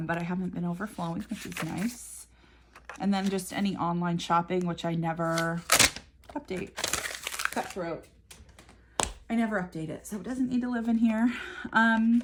I haven't been overflowing, which is nice. And then just any online shopping, which I never update. Cutthroat. I never update it, so it doesn't need to live in here.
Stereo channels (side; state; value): both; identical; correlation 1.00